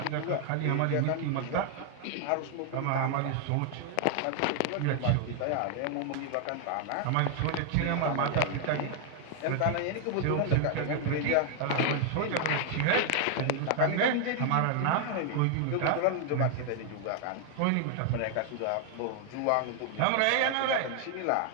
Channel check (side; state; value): both; different; correlation 0.00